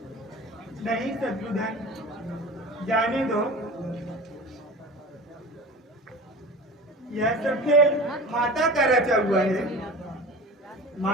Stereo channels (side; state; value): both; normal; correlation 0.35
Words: नहीं शत्रुधन, जाने दो। यह सब खेल माता का रचा हुआ है।